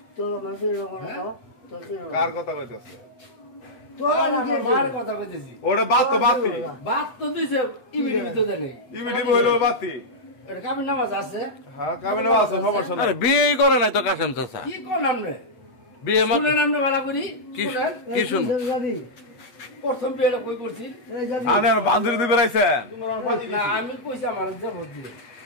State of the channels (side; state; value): right; late; 8.3 ms